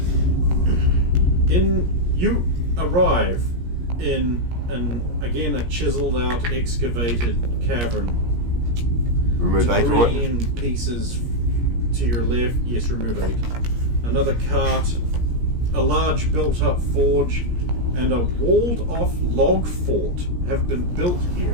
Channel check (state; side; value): late; left; 17 ms